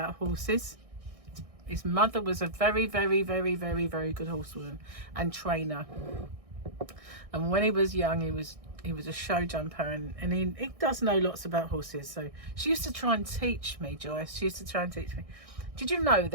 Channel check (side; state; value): left; late; 1.6 ms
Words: horses. His mother was a very good horsewoman and trainer. And when he was young, he was a show jumper, and he does know lots about horses. So she used to try and teach me, Joyce. She used to try and teach me. Did you know